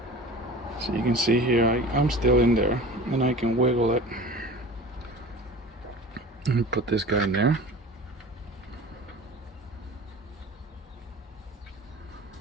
so you can see here, I'm still in there, and I can wiggle it, and put this guy in there.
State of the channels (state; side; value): normal; both; correlation 0.38